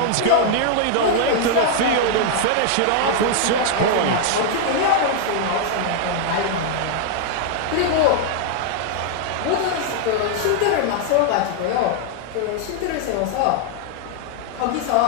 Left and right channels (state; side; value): different; both; correlation 0.00